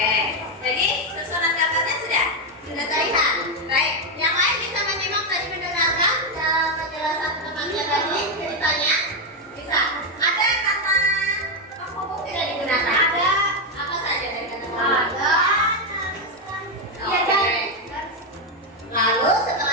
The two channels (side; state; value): both; normal; correlation 0.06